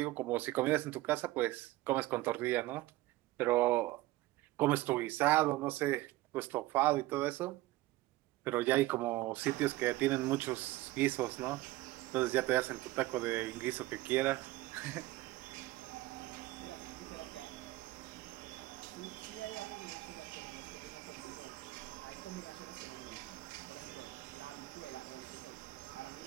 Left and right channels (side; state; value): left; quieter; 18.1 dB